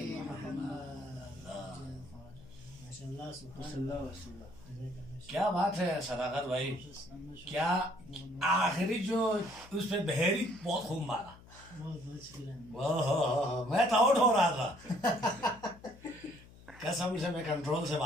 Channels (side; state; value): left; noise; hum, 21 dB below the sound